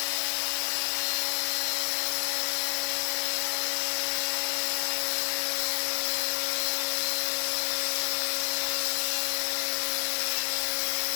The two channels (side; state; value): right; silent; 58 dB below the other